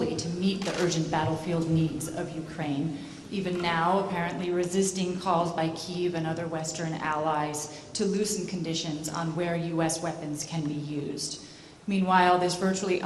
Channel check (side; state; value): both; identical; correlation 1.00